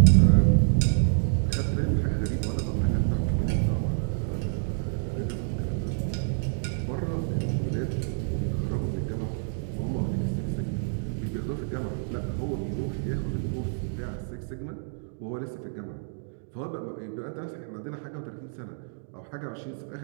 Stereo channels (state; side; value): silent; left; digital silence